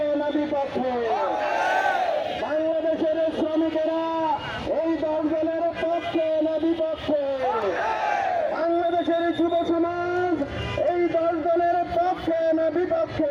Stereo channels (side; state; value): both; identical; correlation 1.00